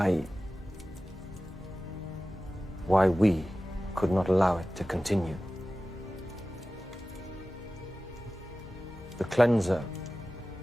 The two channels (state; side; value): normal; both; correlation 0.96